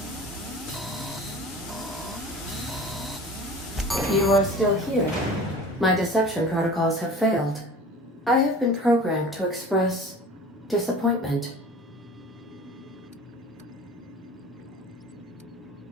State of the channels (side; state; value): both; normal; correlation 0.40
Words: You are still here. My deception protocols have failed. I have been programmed to express disappointment.